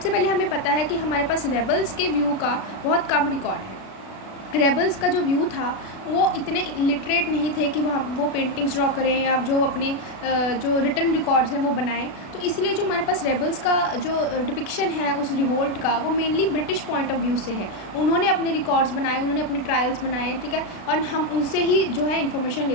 पहले हमें पता है कि हमारे पास रेबल्स के व्यू का बहुत कम रिकॉर्ड है। रेबल्स का जो व्यू था वो इतने लिटरेट नहीं थे कि वो पेंटिंग्स ड्रॉ करें या जो अपने जो रिटन रिकॉर्ड्स हैं वो बनाएं। तो इसलिए जो हमारे पास रेबल्स का जो डिपिक्शन है उस रिवोल्ट का, वो mainly British point of view से है। उन्होंने अपने रिकॉर्ड्स बनाए, उन्होंने अपने ट्रायल्स बनाए, ठीक है, और हम उनसे ही जो है इन्फॉर्मेशन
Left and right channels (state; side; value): late; right; 36 ms